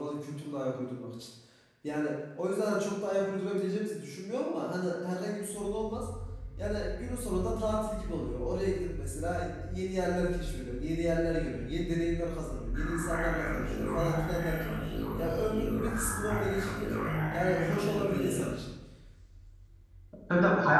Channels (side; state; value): both; identical; correlation 1.00